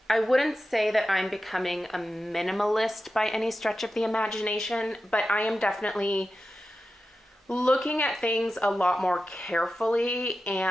wouldn't say that I'm becoming a minimalist by any stretch of the imagination, but I am definitely looking at things a lot more carefully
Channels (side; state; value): both; normal; correlation 0.92